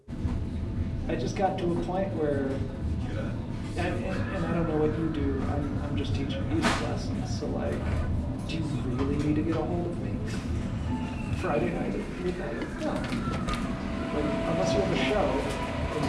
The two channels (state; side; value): identical; both; correlation 1.00